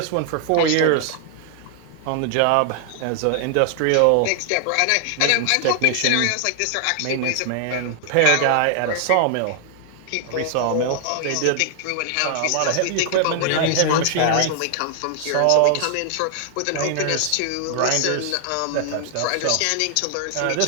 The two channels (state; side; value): different; both; correlation 0.00